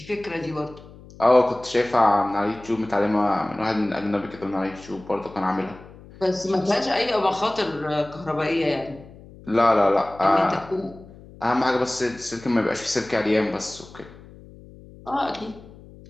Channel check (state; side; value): noise; left; hum, 20 dB below the sound